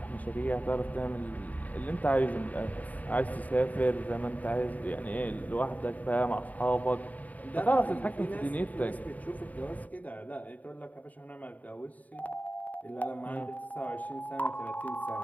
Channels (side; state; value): right; late; 0.074 ms